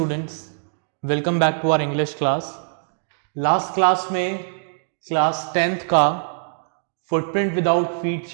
welcome back to our English class. Last class में class 10th का footprint without feet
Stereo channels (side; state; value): left; silent; digital silence